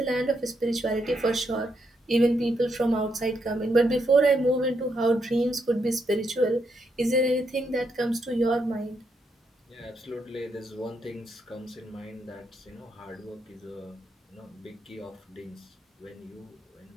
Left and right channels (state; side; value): normal; both; correlation 0.79